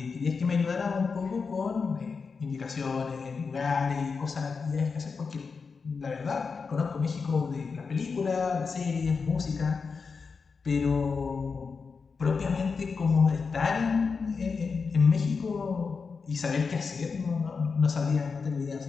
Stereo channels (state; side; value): quieter; right; 5.1 dB